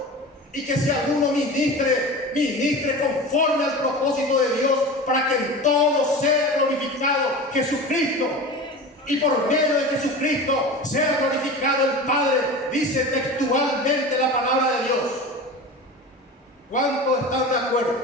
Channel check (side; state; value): both; normal; correlation 0.32